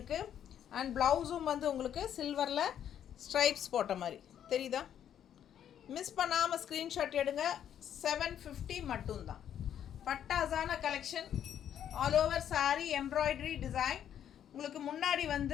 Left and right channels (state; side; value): quieter; right; 9.8 dB